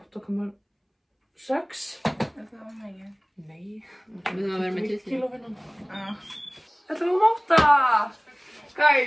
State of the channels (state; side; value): identical; both; correlation 1.00